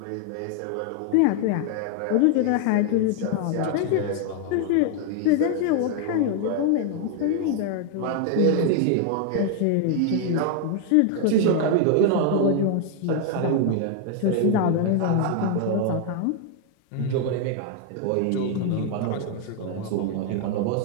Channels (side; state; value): both; different; correlation 0.00